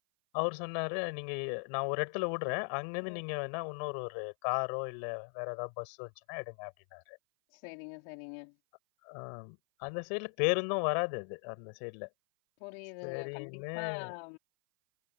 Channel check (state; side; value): silent; right; 52 dB below the other